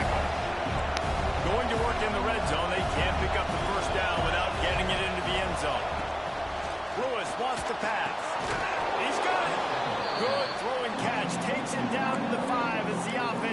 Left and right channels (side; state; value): both; identical; correlation 1.00